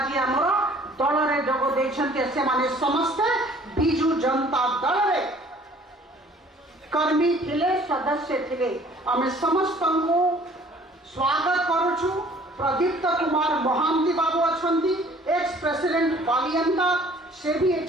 आमर दल रे जोग देछंती से माने समस्ते बीजू जनता दल रे कर्मी थिले सदस्य थिले आमे समस्त को स्वागत करूछु। प्रदीप्त कुमार महांती बाबू अछंती एक्स प्रेसिडेंट बालियंता से भी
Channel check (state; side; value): normal; both; correlation 0.54